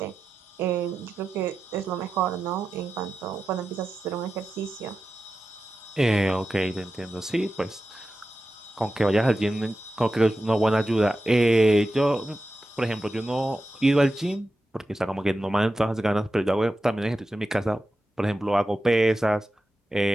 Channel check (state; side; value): normal; both; correlation 0.92